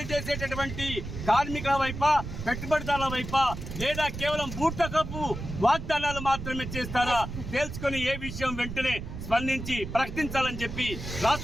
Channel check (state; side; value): noise; right; rumble, 8 dB below the sound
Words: చేసేటటువంటి కార్మికుల వైపా, పెట్టుబడిదారుల వైపా, లేదా కేవలం బూటకపు వాగ్దానాలు మాత్రమే చేస్తారా తేల్చుకొని ఏ విషయం వెంటనే స్పందించి ప్రకటించాలని చెప్పి